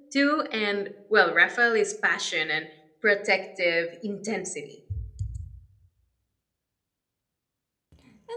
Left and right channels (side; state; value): both; identical; correlation 1.00